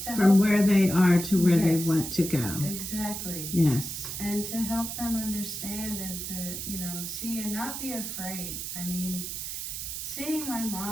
From where they are to where they Yes, want to go. Exactly. Yes. And to help them understand and to, see and not be afraid. I mean, seeing my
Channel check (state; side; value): noise; right; hiss, 6 dB below the sound